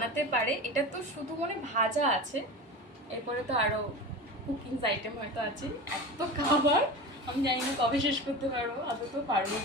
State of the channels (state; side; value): normal; both; correlation 0.30